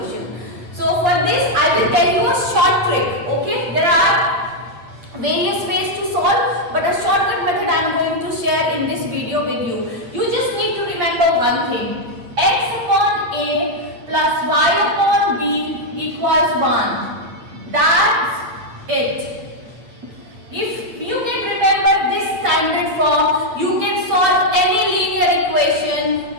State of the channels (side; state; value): left; late; 8.9 ms